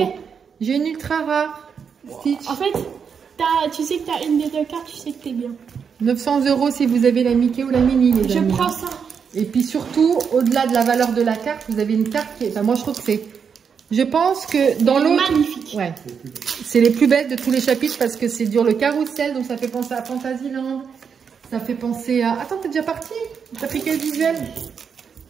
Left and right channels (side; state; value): left; quieter; 6.6 dB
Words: J'ai une ultra rare. Stitch. En fait, tu sais que tu as une des deux cartes, tu sais que t'es bien. 900 euros si vous avez la Mickey ou la Mini, les amis. Je prends ça. Et puis surtout, au-delà de la valeur de la carte, vous avez une carte qui est... Enfin, moi, je trouve que c'est... Je pense que dans l'autre... Magnifique. Ouais. C'est les plus belles de tous les chapitres parce que c'est dur le carrousel, donc ça fait penser à Fantasyland. Ça fait penser à... Attends, t'es déjà parti? T'as pris quel visuel?